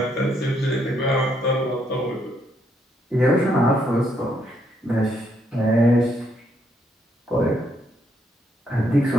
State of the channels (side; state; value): both; normal; correlation 0.74